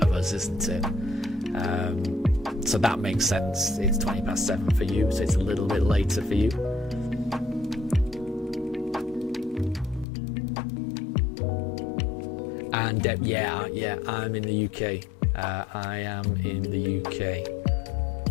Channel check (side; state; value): right; drops out; at 10.1 s